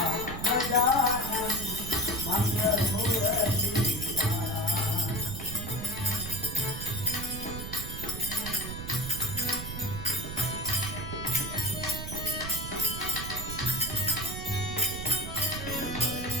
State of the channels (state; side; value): noise; right; rumble, 7 dB below the sound